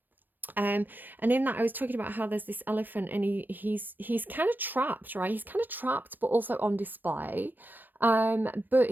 And in that I was talking about how there's this elephant, and he's kind of trapped, right? He's kind of trapped but also on display. But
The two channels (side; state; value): left; late; 0.091 ms